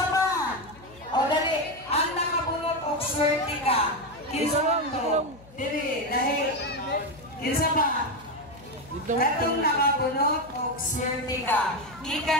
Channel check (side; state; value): left; noise; hum, 23 dB below the sound